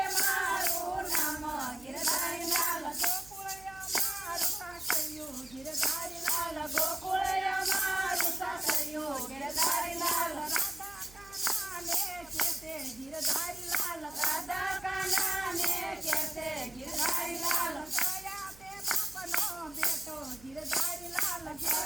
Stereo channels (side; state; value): right; noise; hum, 22 dB below the sound